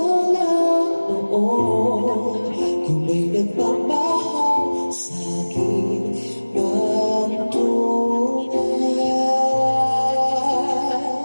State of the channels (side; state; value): both; inverted; correlation -1.00